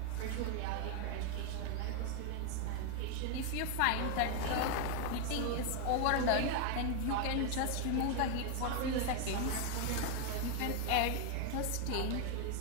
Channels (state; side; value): different; both; correlation 0.01